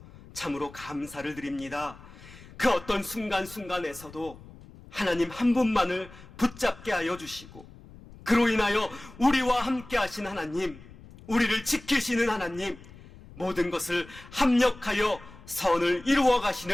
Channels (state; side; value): noise; left; rumble, 19 dB below the sound